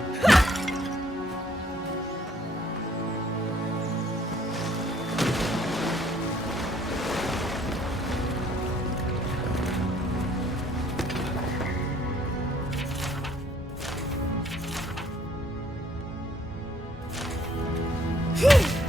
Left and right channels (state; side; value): normal; both; correlation 0.64